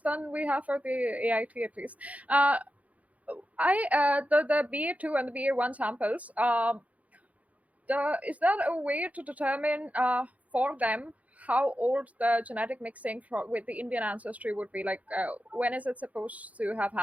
than we have for the AIT at least. The BA2 and the BA1 samples. Is that a way to determine for them how old the genetic mixing with the Indian ancestry would be? Like, when is it supposed to have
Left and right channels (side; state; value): left; late; 0.070 ms